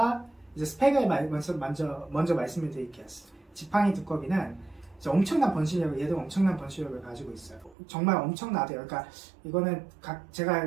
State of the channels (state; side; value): drops out; left; at 7.8 s